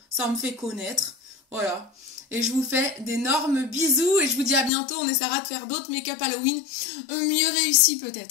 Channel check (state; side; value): drops out; right; at 4.7 s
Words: Ça me fait connaître. Voilà. Et je vous fais d'énormes bisous et je vous dis à bientôt. On essaiera de faire d'autres make-up Halloween mieux réussis